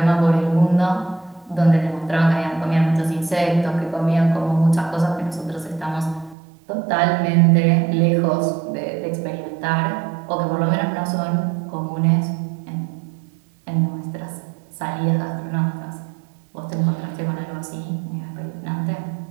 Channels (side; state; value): left; drops out; at 6.4 s